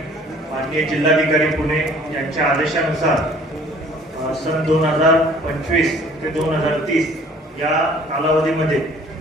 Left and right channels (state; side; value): normal; both; correlation 0.53